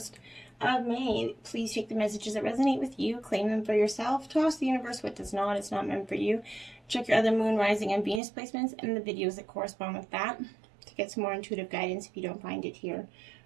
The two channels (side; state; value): left; drops out; at 8.2 s